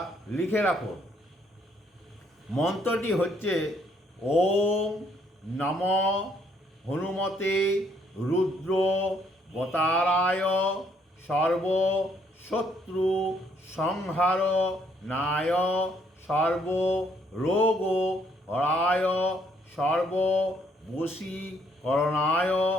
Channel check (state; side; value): normal; both; correlation 0.69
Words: লিখে রাখুন। মন্ত্রটি হচ্ছে ওম নম হনুমতে রুদ্র বতারায় সর্ব শত্রু সংহার নায় সর্ব রোগ হরায় সর্ব বশীকরণায়